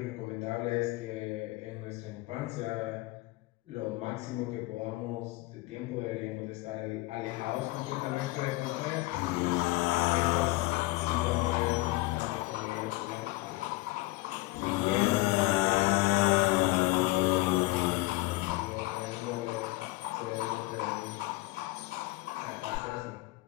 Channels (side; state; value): right; quieter; 20.8 dB